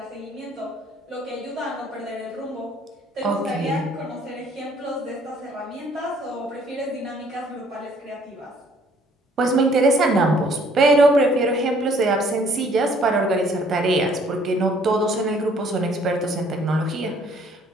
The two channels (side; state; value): both; normal; correlation 0.60